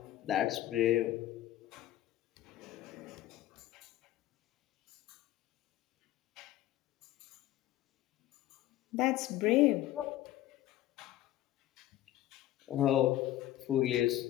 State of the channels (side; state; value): right; quieter; 14.3 dB